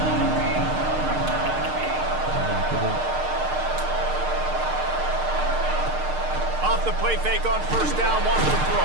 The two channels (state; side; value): late; left; 6.6 ms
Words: Off the play fake on first down, wants to